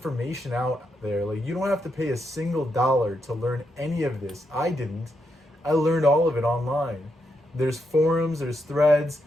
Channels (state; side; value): normal; both; correlation 0.82